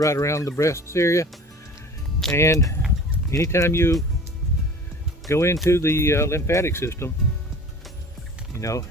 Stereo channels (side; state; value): both; normal; correlation 0.42